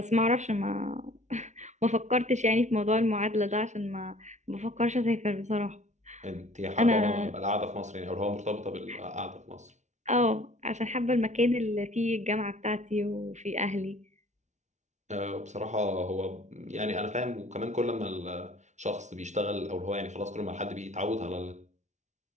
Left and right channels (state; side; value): late; left; 0.34 ms